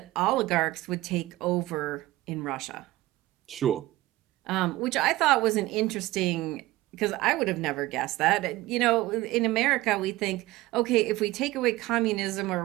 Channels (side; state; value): left; quieter; 17.9 dB